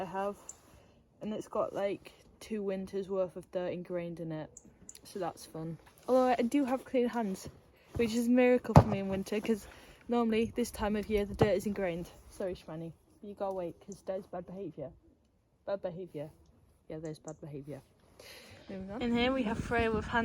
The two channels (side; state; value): both; identical; correlation 1.00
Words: have, and it's got like 2 winters worth of dirt ingrained in it, so that's fun. Although I do have clean hands, which is a miracle for me in winter, because normally this time of year the dirt is ingrained. Sorry Shmani, you gotta wait because there's bad behaviour. Bad behaviour. Yeah, there's bad behaviour. Moving on. In here we have Freya with